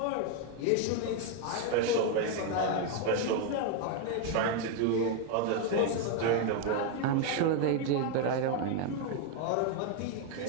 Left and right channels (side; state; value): both; different; correlation 0.01